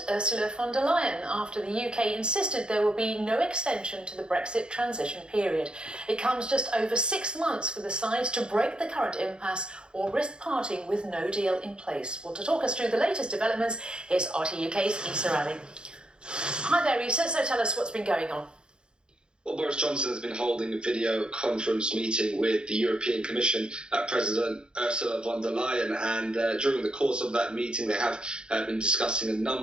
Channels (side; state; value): left; late; 0.050 ms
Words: Ursula von der Leyen after the UK insisted there will be no extension to the Brexit transition period. It comes just over 6 months for the sides to break the current impasse or risk parting with no deal in place. Well, to talk us through the latest developments, here's RT UK's Issa Ali. Hi there, Issa. So tell us what's been going on. Well, Boris Johnson has been holding a video conference meeting with the European Commission President Ursula von der Leyen, and during the course of that meeting they have been discussing a